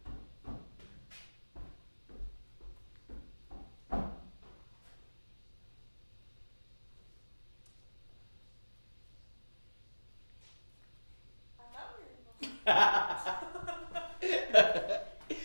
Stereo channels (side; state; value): both; inverted; correlation -1.00